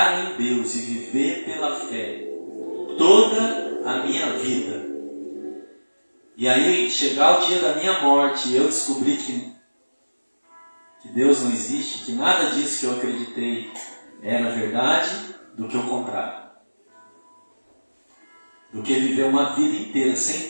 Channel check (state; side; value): inverted; both; correlation -1.00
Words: em Deus e viver pela fé toda a minha vida. E aí, chegar o dia da minha morte e eu descobrir que Deus não existe, que nada disso que eu acreditei era verdade, do que o contrário. Do que viver uma vida inteira sem